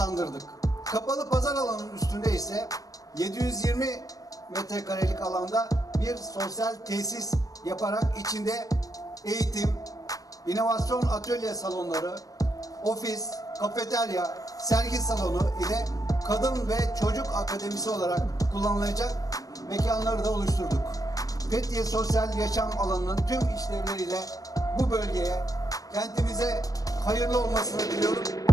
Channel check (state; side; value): late; right; 0.17 ms